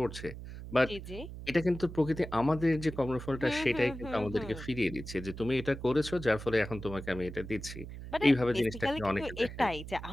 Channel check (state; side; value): noise; right; hum, 11 dB below the sound